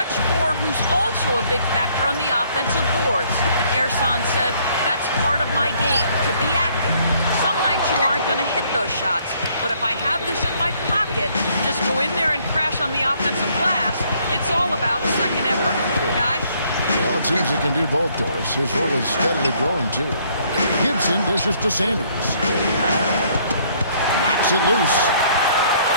four who's also a big factor on the offensive boards. Ersan said, that's part of my game, to be active. Some nights you aren't going to hit those shots, but if I have this in my pocket, just go in there and crash on the offensive glass, it's all about second effort. Guys? Well, it seems he can do both, Doris. His role is steadily growing, too. Gibson dishes to Sanders. Knocks it loose.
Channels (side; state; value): both; inverted; correlation -0.64